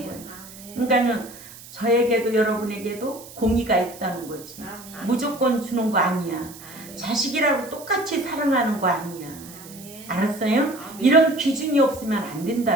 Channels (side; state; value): right; noise; hiss, 17 dB below the sound